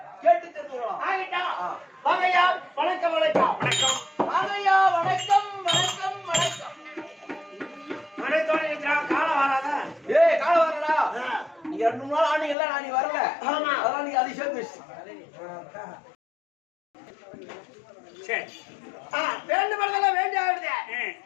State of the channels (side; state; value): right; drops out; at 12.6 s